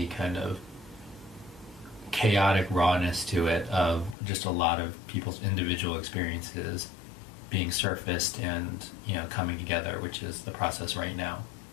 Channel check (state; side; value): drops out; right; at 4.2 s